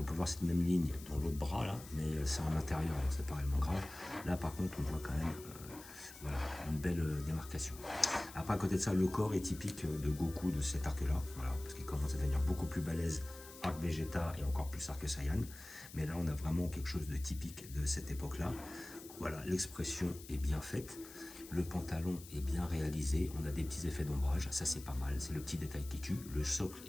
peut voir cette même ligne dans l'autre bras là, mais c'est en intérieur, donc c'est pas réellement grave. Là, par contre, on voit quand même voilà, une belle démarcation. Après, à côté de ça, le corps est typique de Goku de cet arc-là, voilà, parce qu'il commence à devenir beaucoup plus balèze. Arc Vegeta et encore plus Arc Saiyan. Mais là, on a vraiment quelque chose de typique de cette époque-là. Voilà, l'expression est bien faite. Le pantalon est bien réalisé. On a des petits effets d'ombrage. Ça, c'est pas mal. C'est le petit détail qui tue. Le socle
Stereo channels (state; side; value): noise; left; hiss, 16 dB below the sound